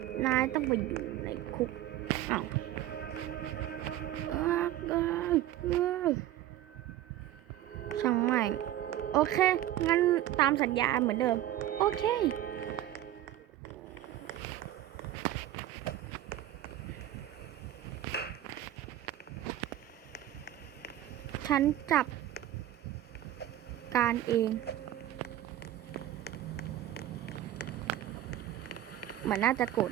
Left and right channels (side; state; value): left; quieter; 13.1 dB